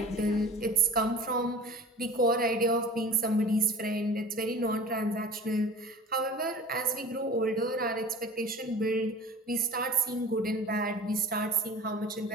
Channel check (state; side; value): normal; both; correlation 0.39